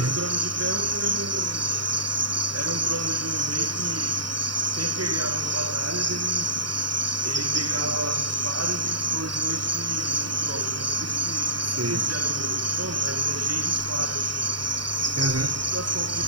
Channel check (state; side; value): late; left; 0.71 ms